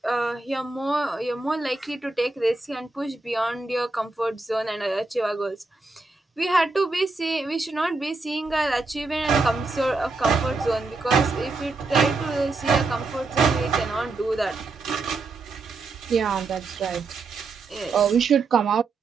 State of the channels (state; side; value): quieter; left; 3.7 dB